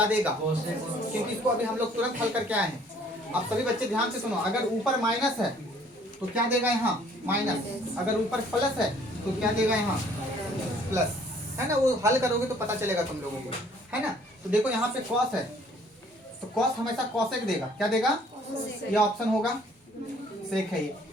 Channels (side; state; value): both; normal; correlation 0.58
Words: देगा? क्योंकि इसको अभी हम लोग तुरंत हल करके आए हैं। अब सभी बच्चे ध्यान से सुनो, अगर ऊपर माइनस है तो क्या देगा? यहाँ माइनस। अगर ऊपर प्लस है तो क्या देगा? यहाँ प्लस, है ना। वो हल करोगे तो पता चलेगा तुम लोगों को, है ना। तो देखो यहाँ पे कॉस है तो कॉस हमेशा कॉसेक देगा। क्या देगा? ये ऑप्शन होगा, सेक है ये।